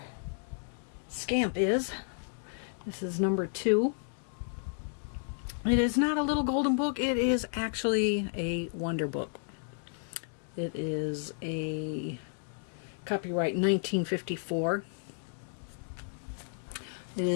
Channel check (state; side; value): silent; right; digital silence